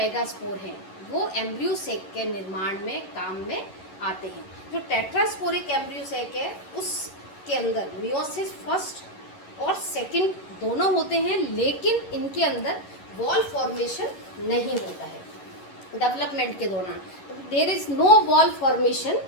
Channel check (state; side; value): late; right; 11 ms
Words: हैं वो एम्ब्रियोसेक के निर्माण में काम में आते हैं। जो टेट्रास्पोरिक एम्ब्रियोसेक है उसके अंदर मियोसिस फर्स्ट और सेकंड दोनों होते हैं, लेकिन इनके अंदर वॉल फॉर्मेशन नहीं होता है डेवलपमेंट के दौरान। There is no wall formation